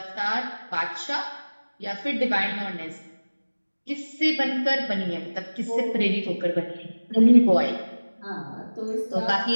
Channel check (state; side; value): inverted; both; correlation -1.00